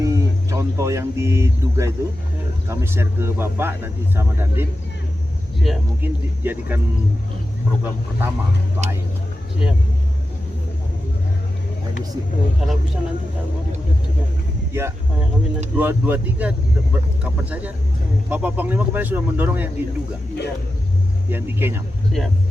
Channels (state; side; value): normal; both; correlation 0.91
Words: contoh yang diduga itu kami share ke Bapak nanti sama Dandim. Siap. Mungkin dijadikan program pertama untuk air. Siap. Air bersih. Kalau bisa nanti tak mau dibuat juga. Ya, Kami nanti 2-3 kapan saja. Bapak Panglima kemarin sudah mendorong yang diduga, yang di Kenyam. siap.